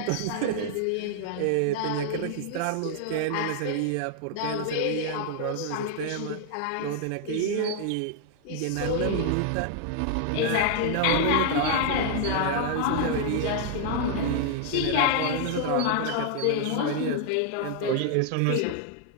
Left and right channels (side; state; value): both; different; correlation 0.00